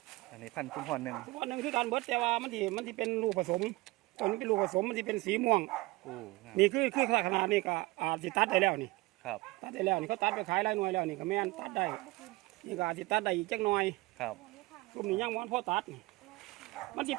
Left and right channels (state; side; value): quieter; left; 21.7 dB